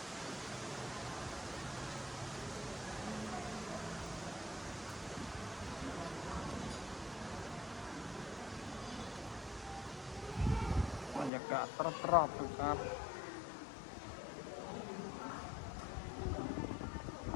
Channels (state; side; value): drops out; right; at 11.3 s